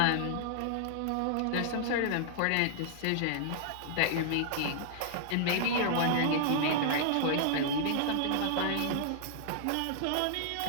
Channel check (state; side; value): different; both; correlation -0.01